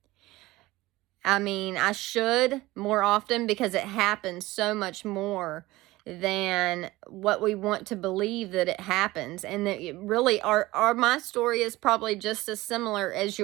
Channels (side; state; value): left; quieter; 18.9 dB